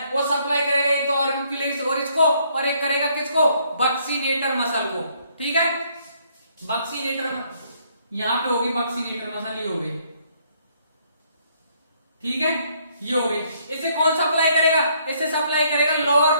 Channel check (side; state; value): both; inverted; correlation -0.67